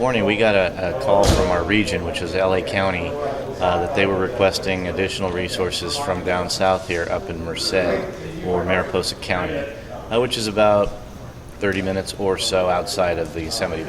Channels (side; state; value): both; identical; correlation 1.00